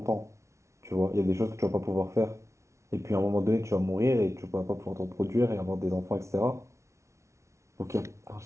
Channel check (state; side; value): late; left; 0.14 ms